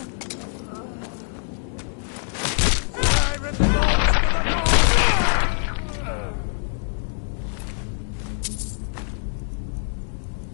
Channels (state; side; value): silent; right; digital silence